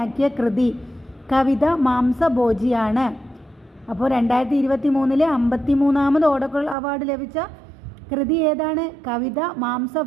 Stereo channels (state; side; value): drops out; left; at 6.8 s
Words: കൃതി കവിത മാംസഭോജിയാണ്. അപ്പോൾ 2023 53ാമത് ഓടക്കുഴൽ അവാർഡ് ലഭിച്ച കൃതി ഏതാണ്? കവിത